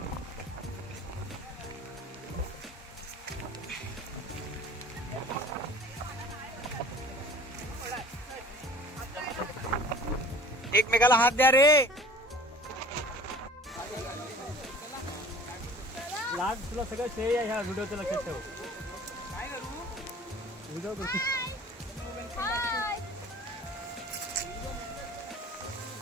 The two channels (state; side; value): normal; both; correlation 0.45